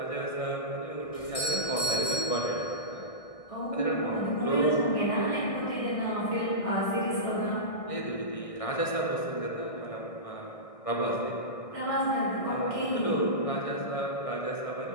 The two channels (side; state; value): right; late; 1.6 ms